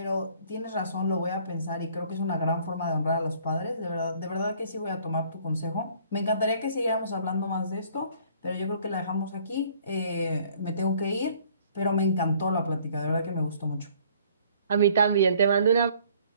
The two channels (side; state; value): both; inverted; correlation -0.58